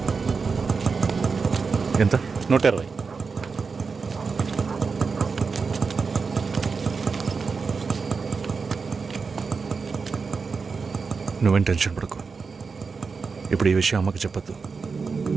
ఎంత? 120. నువ్వేం టెన్షన్ పడకు. ఇప్పుడు ఈ విషయం అమ్మకి చెప్పొద్దు.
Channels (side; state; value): left; quieter; 5.0 dB